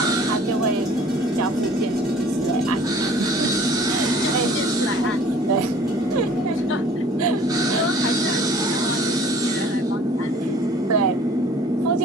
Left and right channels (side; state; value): both; normal; correlation 0.51